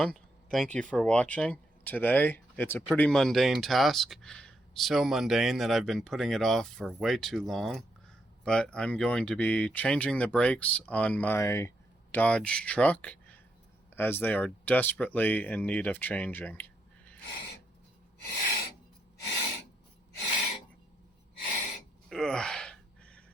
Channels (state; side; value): normal; both; correlation 0.79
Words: thank you for watching. Today it's a pretty mundane task, so mundane that I've been putting it off for way too long, but I'm going to be changing the brakes on my Dodge truck as they are desperately in need of changing. Ugh.